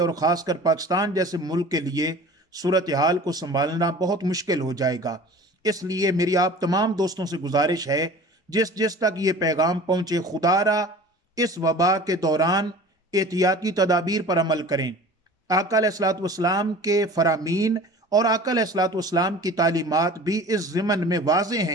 خاص کر پاکستان جیسے ملک کے لیے صورتحال کو سنبھالنا بہت مشکل ہو جائے گا۔ اس لیے میری آپ تمام دوستوں سے گزارش ہے، جس تک یہ پیغام پہنچے، خدا را اس وبا کے دوران احتیاطی تدابیر پر عمل کریں۔ آقا علیہ الصلوۃ والسلام کے فرامین اور آقا علیہ الصلوۃ والسلام کی تعلیمات بھی اس ضمن میں واضح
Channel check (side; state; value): both; normal; correlation 0.42